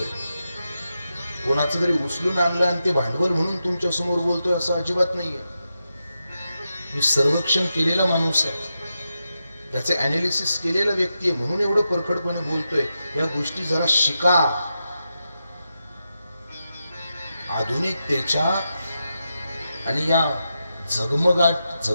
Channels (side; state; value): both; inverted; correlation -0.88